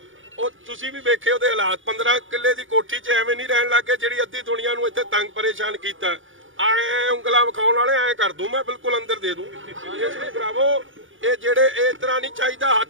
ਉਹ ਤੁਸੀਂ ਵੀ ਵੇਖੇ ਉਹਦੇ ਹਾਲਾਤ। 15 ਕਿੱਲੇ ਦੀ ਕੋਠੀ 'ਚ ਐਵੇਂ ਨਹੀਂ ਰਹਿਣ ਲੱਗੇ ਜਿਹੜੀ ਅੱਧੀ ਦੁਨੀਆ ਨੂੰ ਇੱਥੇ ਤੰਗ ਪਰੇਸ਼ਾਨ ਕੀਤਾ। ਐ ਉਂਗਲਾਂ ਵਿਖਾਉਣ ਵਾਲੇ ਐ ਕਰ ਦੂੰ ਮੈਂ, ਬਿਲਕੁਲ ਅੰਦਰ ਦੇ ਦੂੰ। ਇਸ ਲਈ ਭਰਾਵੋ ਇਹ ਜਿਹੜੇ ਇਸ ਤਰ੍ਹਾਂ ਨਹੀਂ ਚਾਹੀਦਾ,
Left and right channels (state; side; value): late; left; 0.57 ms